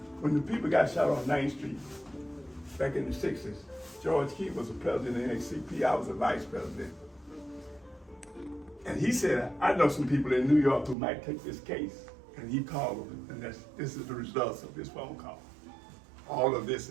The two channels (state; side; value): drops out; left; at 11.0 s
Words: when the people got shot on 9th Street back in the 60s, George Key was the president of the NAACP, I was the vice president. And he said, I know some people in New York who might take this case. And he called them, and this is the results of this phone call. All of this